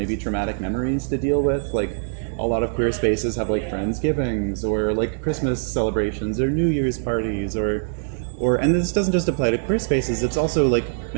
traumatic memories to deal with. Like, a lot of queer spaces have, like, Friendsgivings or, like, Christmas celebrations or New Year's parties or and this doesn't just apply to queer spaces, it's also, like,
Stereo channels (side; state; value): left; silent; digital silence